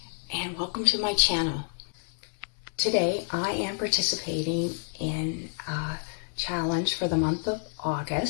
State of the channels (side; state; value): right; silent; 59 dB below the other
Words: and welcome to my channel. Today, I am participating in a challenge for the month of